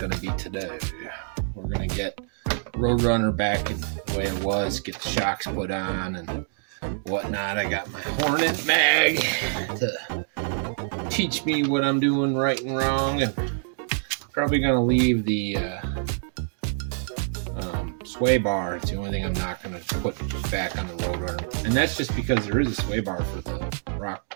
to be today. We're going to get Roadrunner back in the way it was, get the shocks put on and whatnot. I got my Hornet mag to teach me what I'm doing right and wrong, and probably going to leave the sway bar. It's the only thing I'm not going to put back on the Roadrunner. And that's just because there is a sway bar for the rock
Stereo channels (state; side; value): silent; left; digital silence